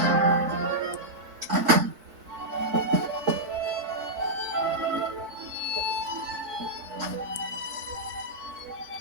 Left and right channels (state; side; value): late; left; 4.5 ms